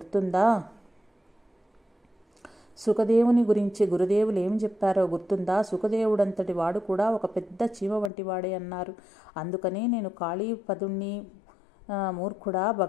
సుఖదేవుని గురించి గురుదేవులు ఏం చెప్పారో గుర్తుందా? సుఖదేవుడంతటి వాడు కూడా ఒక పెద్ద చీమ వంటి వాడే అన్నారు. అందుకనే నేను కాళీపదుణ్ణి మూర్ఖుడా,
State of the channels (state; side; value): drops out; right; at 8.1 s